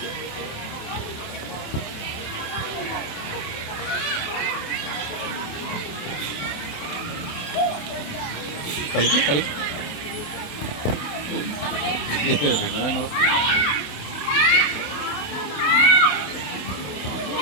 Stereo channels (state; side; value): late; right; 28 ms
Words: കളിക്ക് കളി ഞങ്ങൾ